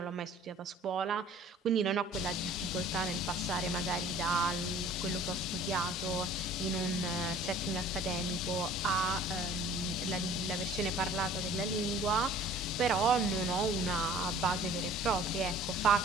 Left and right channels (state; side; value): normal; both; correlation 0.49